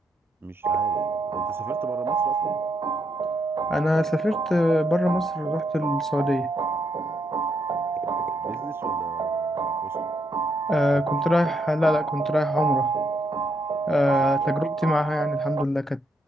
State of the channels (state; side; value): normal; both; correlation 0.78